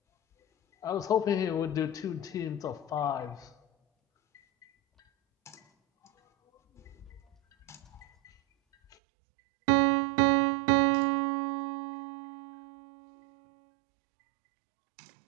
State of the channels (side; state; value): left; drops out; at 9.0 s